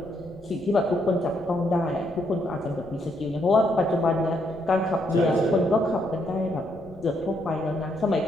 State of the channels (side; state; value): left; noise; rumble, 22 dB below the sound